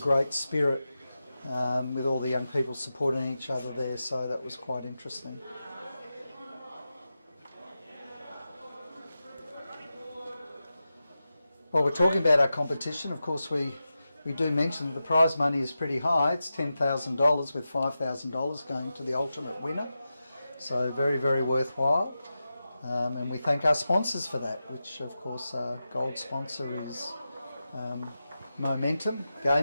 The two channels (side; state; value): both; inverted; correlation -0.92